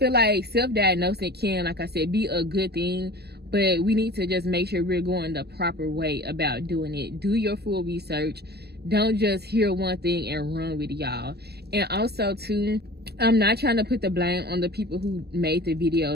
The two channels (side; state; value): left; late; 0.47 ms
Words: like self-diagnosing can, like I said, be a good thing, but we need to just make sure we're going the proper way about doing it. Do your full research. Don't just hear one thing and run with it, y'all. And also too, I'm not trying to put the blame on the people who made the